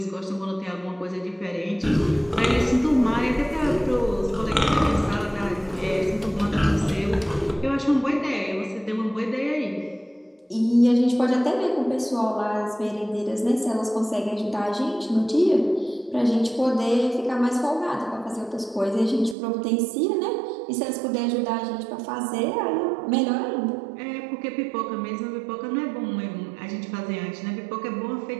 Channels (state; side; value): drops out; left; at 19.4 s